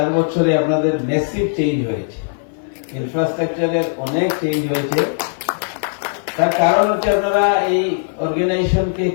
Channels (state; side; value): silent; right; 58 dB below the other